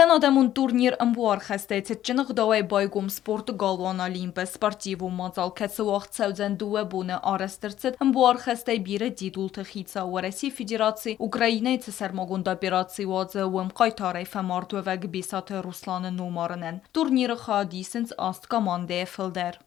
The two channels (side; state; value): right; quieter; 12.3 dB